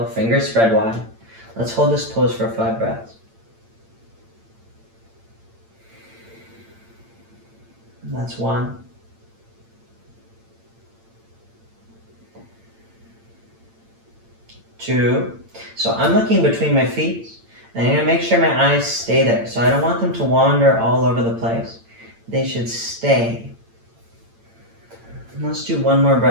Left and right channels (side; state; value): left; late; 8.8 ms